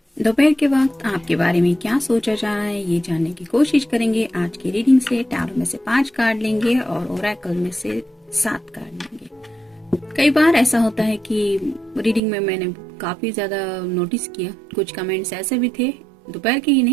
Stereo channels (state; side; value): drops out; left; at 12.2 s